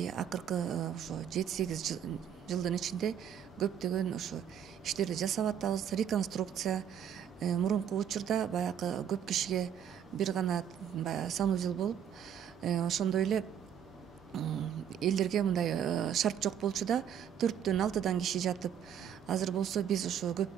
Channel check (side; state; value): left; quieter; 8.9 dB